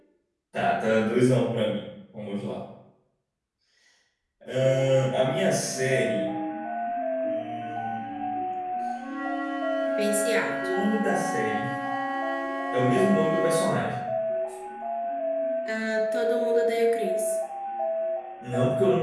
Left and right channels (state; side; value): identical; both; correlation 1.00